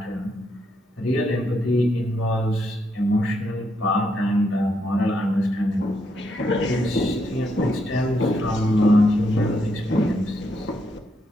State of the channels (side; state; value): both; normal; correlation 0.78